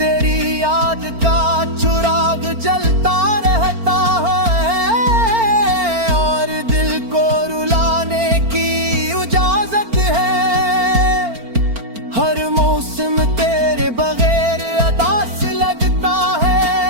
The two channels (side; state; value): left; late; 4.4 ms